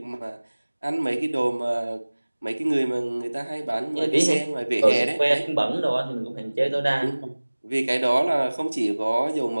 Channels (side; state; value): both; inverted; correlation -1.00